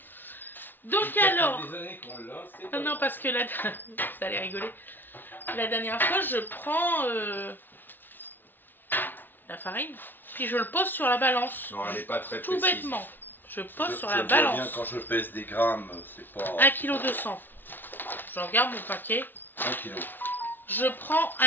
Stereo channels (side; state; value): right; late; 0.093 ms